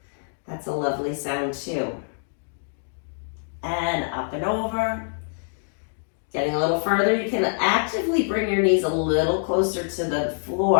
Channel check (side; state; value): right; silent; digital silence